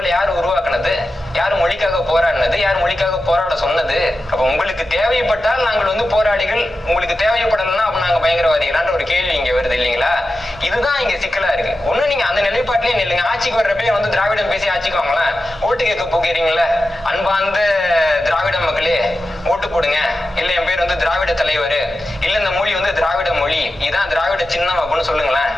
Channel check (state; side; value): normal; both; correlation 0.92